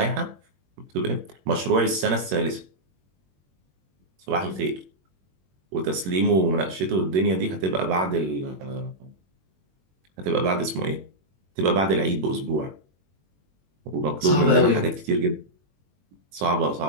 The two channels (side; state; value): left; late; 21 ms